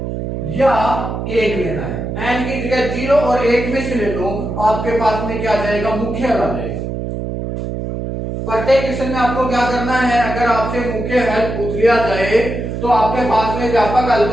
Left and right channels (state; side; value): noise; right; hum, 5 dB below the sound